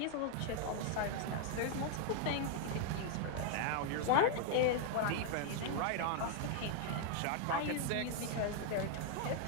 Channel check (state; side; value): different; both; correlation 0.00